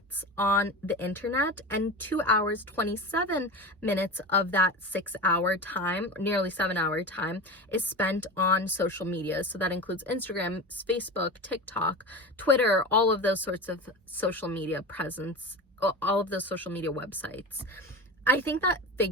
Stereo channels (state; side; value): normal; both; correlation 0.28